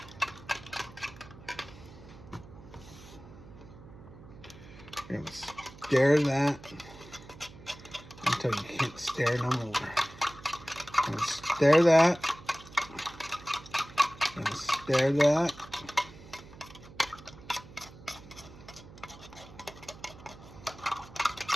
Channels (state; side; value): noise; right; hum, 18 dB below the sound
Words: We're going to stir that until you can't stir no more. I'm going to stir that. I'm going to stir that.